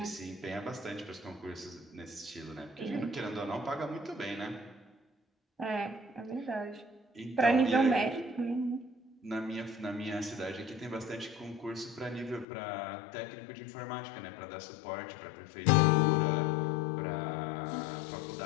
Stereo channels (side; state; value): right; drops out; at 12.5 s